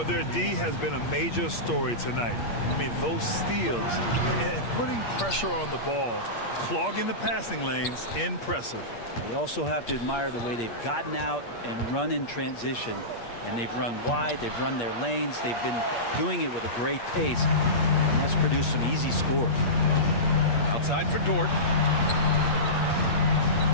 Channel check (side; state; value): right; late; 8.5 ms